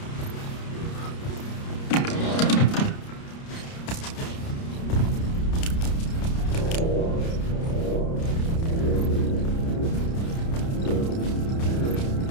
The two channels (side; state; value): right; late; 30 ms